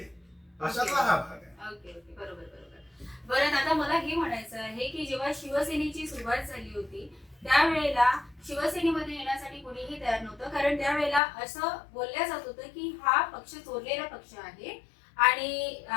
अशातला हा भाग आहे. ओके ओके, बरोबर बरोबर. बरं, आता मला हे म्हणायचं आहे की जेव्हा शिवसेनेची सुरुवात झाली होती त्यावेळेला शिवसेनेमध्ये येण्यासाठी कोणीही तयार नव्हतं, कारण त्यावेळेला असं बोलल्या जात होतं की हा पक्ष चोरलेला पक्ष आहे. आणि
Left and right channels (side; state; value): right; drops out; at 11.2 s